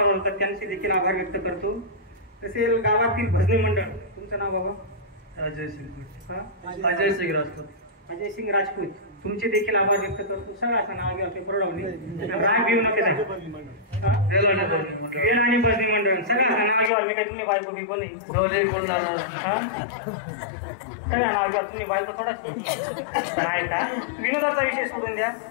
होतात, त्यांचे देखील आभार व्यक्त करतो। तसे गावातील भजनी मंडळ, तुमचं नाव बाबा? अजय सिंग राजपूत। अजय सिंग राजपूत, तुमचे देखील आभार व्यक्त करतो। सगळं असं नाव घ्या, बरोडवणे राग घेऊ नका, वेळ आणि भजनी मंडळ सगळं असं नाव घ्या। मी काय तुम्ही बायको बिको नाही, सगळं नाव घ्या, तुम्ही बायको थोडा काय का विनोदाचा विषय सोडून द्या।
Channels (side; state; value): right; drops out; at 16.9 s